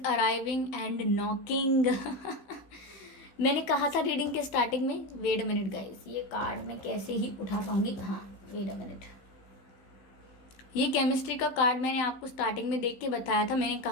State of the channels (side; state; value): right; late; 15 ms